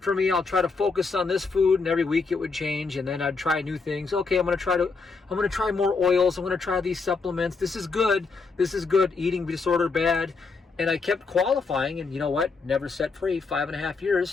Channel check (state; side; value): quieter; right; 4.4 dB